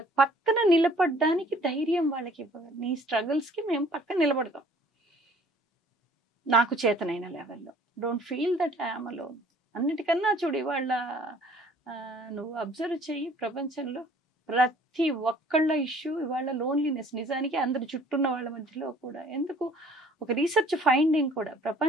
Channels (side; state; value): both; normal; correlation 0.55